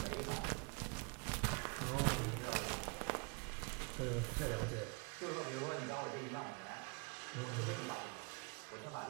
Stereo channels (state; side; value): quieter; left; 32.9 dB